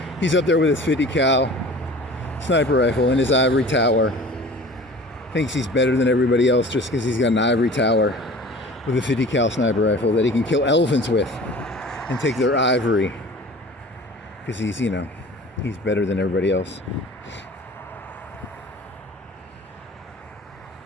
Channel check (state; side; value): normal; both; correlation 0.42